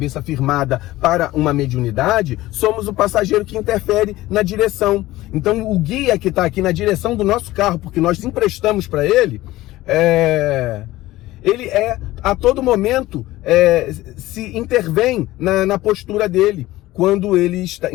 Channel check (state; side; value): quieter; right; 17.1 dB